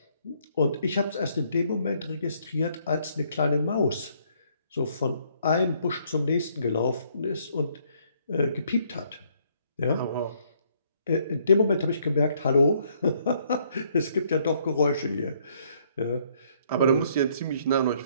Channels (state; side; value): inverted; both; correlation -0.67